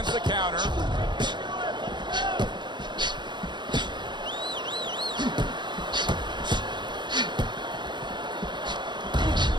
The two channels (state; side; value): late; left; 0.22 ms